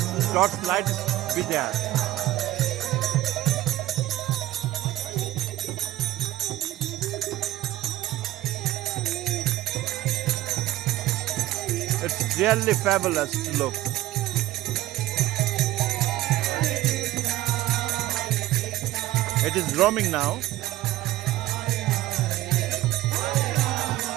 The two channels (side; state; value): left; quieter; 15.7 dB